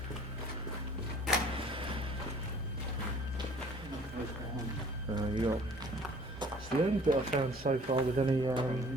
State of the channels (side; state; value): both; normal; correlation 0.52